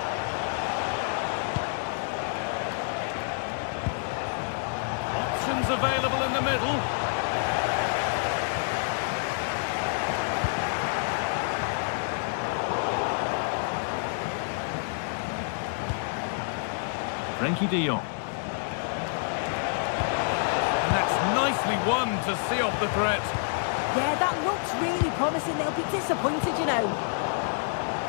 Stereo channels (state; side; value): silent; right; digital silence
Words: Options available in the middle. Frankie de Jong. And that's nicely won to see off the threat. Yeah, that looks really promising. They'll be disappointed, you know.